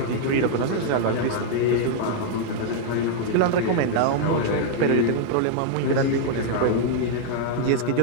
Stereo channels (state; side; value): different; both; correlation -0.01